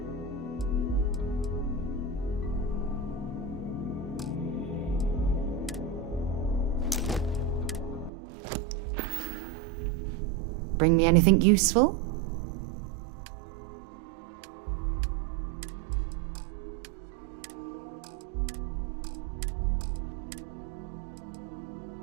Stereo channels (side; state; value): left; drops out; at 8.1 s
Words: Bring me anything useful?